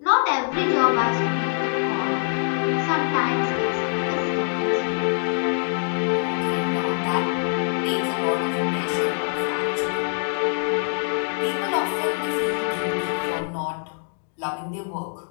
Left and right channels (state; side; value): silent; right; 59 dB below the other